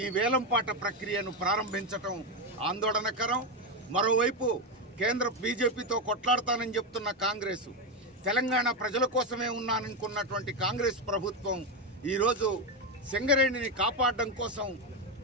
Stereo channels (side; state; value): both; normal; correlation 0.10